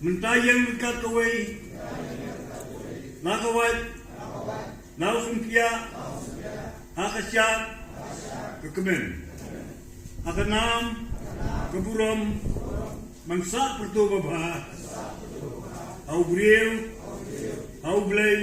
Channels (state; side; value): identical; both; correlation 1.00